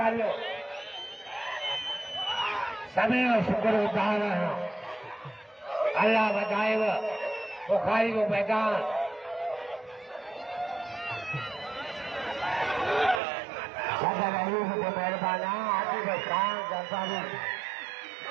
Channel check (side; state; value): left; drops out; at 13.2 s